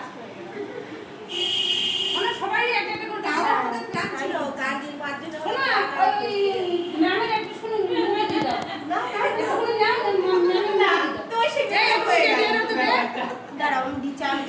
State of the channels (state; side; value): identical; both; correlation 1.00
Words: হয়ে গেলাম। আমরা সবাই একটা একটা করে তাও দাও। আমাদের প্ল্যান ছিল কার্ডির বার্থডে শোনা ওই ম্যামের একটু শুনুন মুভি দিয়ে দাও। না শুনুন ম্যামের না তো সেটা হয়ে গেছে। দাঁড়াও আমি